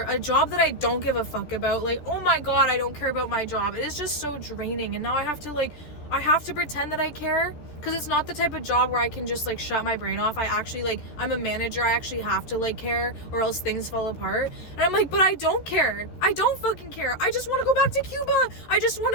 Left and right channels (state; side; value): late; right; 14 ms